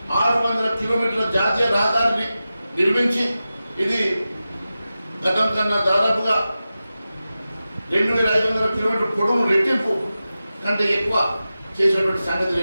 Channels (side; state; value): both; inverted; correlation -0.94